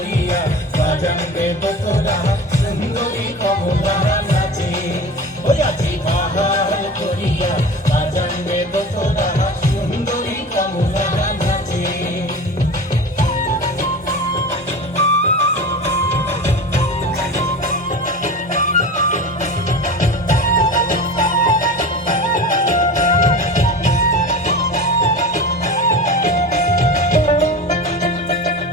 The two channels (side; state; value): both; normal; correlation 0.33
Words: বাজানবে তোরা সুন্দরী কমলা নাচে ওই আজি বাহার করিয়া বাজানবে তোরা সুন্দরী কমলা নাচে